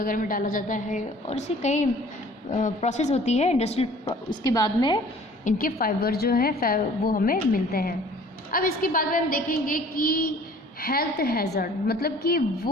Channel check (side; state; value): both; normal; correlation 0.51